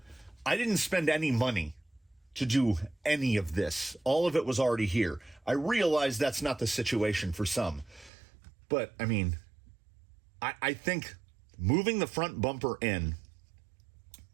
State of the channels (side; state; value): left; drops out; at 8.1 s